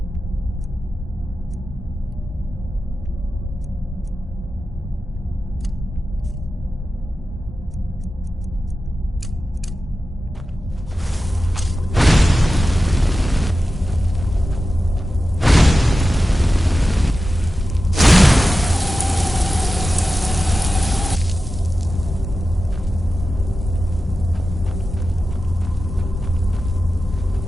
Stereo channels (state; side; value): normal; both; correlation 0.93